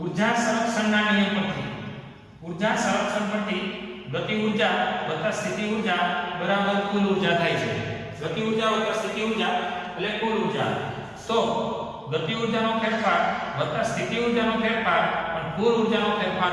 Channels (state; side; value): identical; both; correlation 1.00